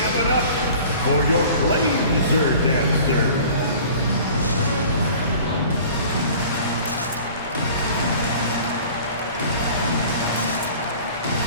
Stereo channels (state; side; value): inverted; both; correlation -0.46